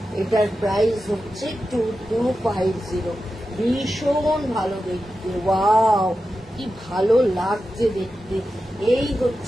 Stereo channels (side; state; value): both; normal; correlation 0.91